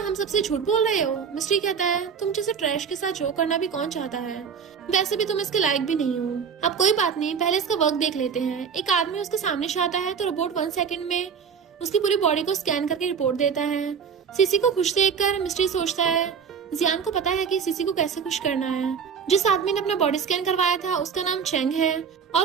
सबसे झूठ बोल रहे हो? मिस्ट्री कहता है, तुम जैसे ट्रैश के साथ जोक करना भी कौन चाहता है? वैसे भी तुम इसके लायक भी नहीं हो। अब कोई बात नहीं, पहले इसका वर्क देख लेते हैं। एक आदमी उसके सामने से आता है तो रोबोट 1 सेकंड में उसकी पूरी बॉडी को स्कैन करके रिपोर्ट देता है। सीसी को खुश देखकर मिस्ट्री सोचता है, जियान को पता है कि सीसी को कैसे खुश करना है। जिस आदमी ने अपना बॉडी स्कैन करवाया था उसका नाम चेंग है और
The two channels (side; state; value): left; quieter; 6.7 dB